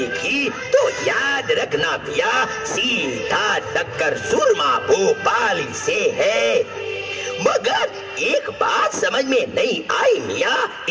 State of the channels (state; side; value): identical; both; correlation 1.00